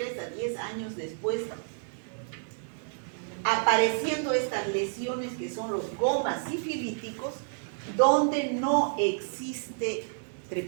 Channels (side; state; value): left; silent; digital silence